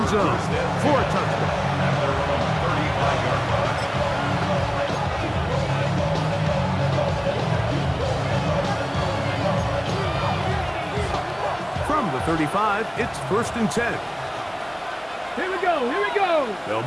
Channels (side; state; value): both; identical; correlation 1.00